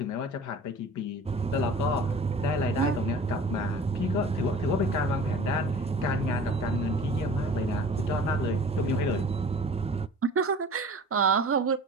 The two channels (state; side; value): normal; both; correlation 0.44